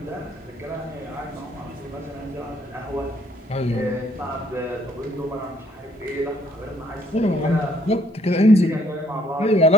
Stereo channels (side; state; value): both; normal; correlation 0.65